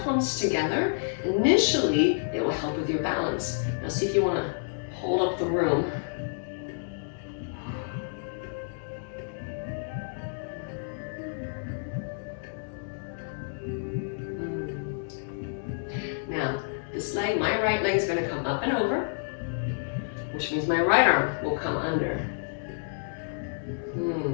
palms together, initially it will help with your balance. Now see if you want to hold up the room. Now, this leg, my right leg is going to come up and over, which means my right arm will come under.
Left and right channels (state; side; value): silent; right; digital silence